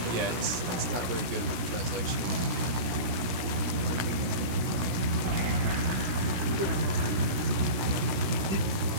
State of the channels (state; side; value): late; left; 16 ms